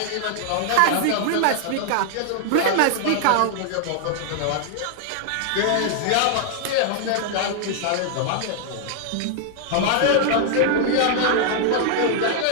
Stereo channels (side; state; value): both; different; correlation 0.00